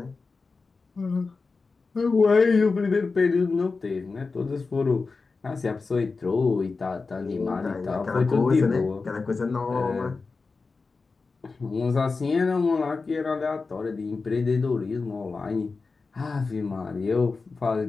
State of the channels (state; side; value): quieter; right; 4.2 dB